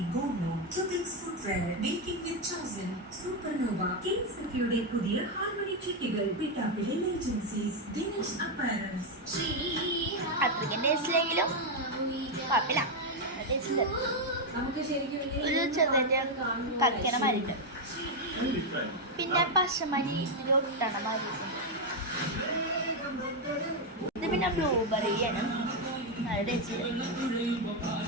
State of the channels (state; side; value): normal; both; correlation 0.03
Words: Gono Tubix Footwear Making with Chosen Supernova Kings Security പുതിയ ഹാർമണി ചിട്ടികൾ പിട്ടാപ്പിലെ ഏജൻസീസ് ദിനേശ് അപ്പാരൽസ് അത്രയ്ക്ക് ടേസ്റ്റിലെങ്കിലും കുഴപ്പമില്ല. ടേസ്റ്റ് ഒരു ചെറുതായിട്ട് കക്കണ മരിണ്ട്, പിന്നെ പശമരി ഒട്ടണ മരിണ്ട്. ഇത് പിന്നെ ബ്ലൂബെറിയാണ്. നല്ല ടേസ്റ്റ്.